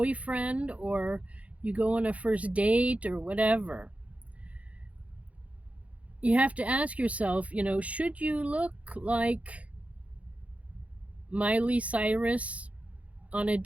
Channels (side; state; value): left; late; 0.066 ms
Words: or you go on a first date or whatever, you have to ask yourself, should you look like Miley Cyrus on a